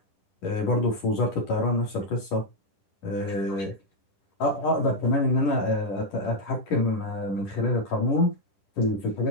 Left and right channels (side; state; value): right; late; 10 ms